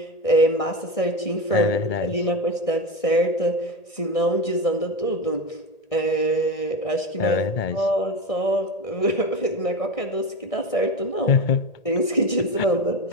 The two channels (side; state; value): right; late; 1.6 ms